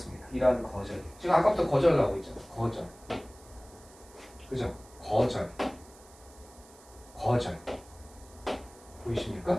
이러한 거절. 지금 아까부터 거절 나오고 있잖아. 거절. 그죠? 거절.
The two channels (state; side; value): noise; right; hiss, 24 dB below the sound